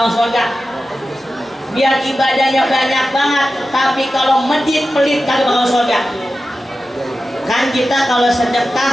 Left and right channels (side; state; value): both; normal; correlation 0.93